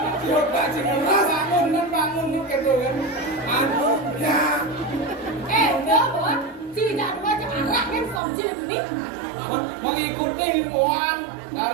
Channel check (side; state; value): left; drops out; at 8.2 s